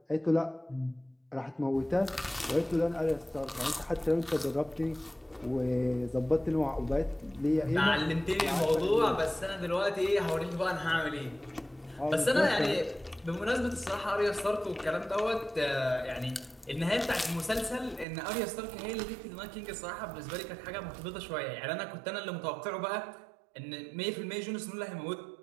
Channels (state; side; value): drops out; left; at 18.1 s